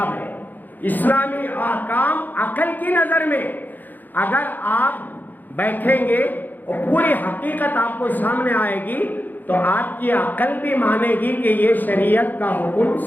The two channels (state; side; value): late; right; 0.086 ms